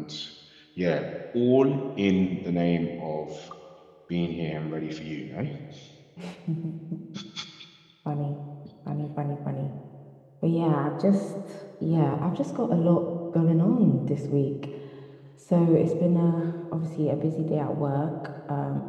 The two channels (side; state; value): both; identical; correlation 1.00